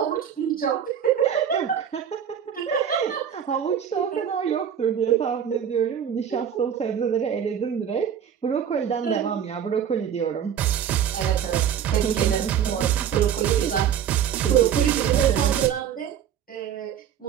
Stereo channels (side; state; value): left; quieter; 8.9 dB